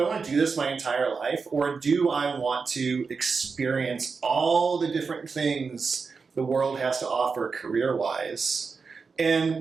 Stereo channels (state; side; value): quieter; left; 5.0 dB